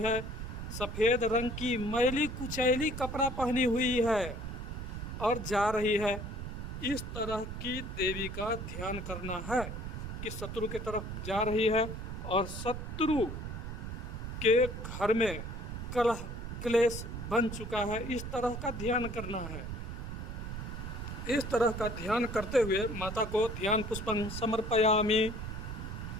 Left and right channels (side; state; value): right; noise; rumble, 6 dB below the sound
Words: सफ़ेद रंग की मैली कुचैली कपड़ा पहनी हुई है और जा रही है। इस तरह की देवी का ध्यान करना है कि शत्रु की तरफ जा रही है और शत्रु के घर में कलह क्लेश बन चुका है। इस तरह का ध्यान करना है। इस तरह का ध्यान करते हुए माता को ध्यान पुष्पं समर्पयामि।